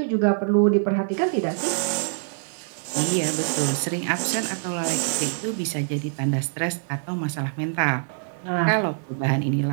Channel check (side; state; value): left; silent; 62 dB below the other